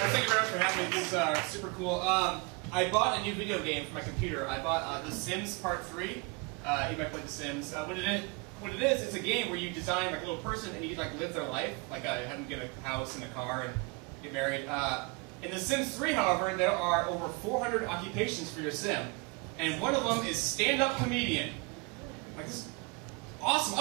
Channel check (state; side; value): quieter; left; 30.1 dB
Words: you very much for having me. This is super cool. I bought a new video game for my computer. I bought The Sims Part 3. You might play The Sims. What it is, it's a game where you design like a little person and you like live their life, like have them get a house and a car and get married. In The Sims 3, however, there are over 400 occupations for your sim, and one of them is stand-up comedian. Like this is awesome.